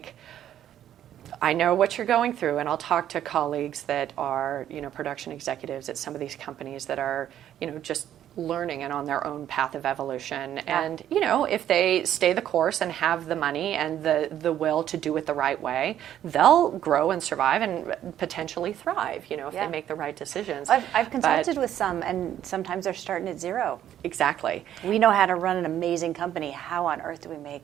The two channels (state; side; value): quieter; left; 11.1 dB